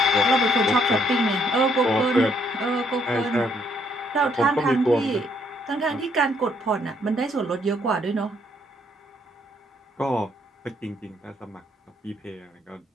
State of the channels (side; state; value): both; normal; correlation 0.69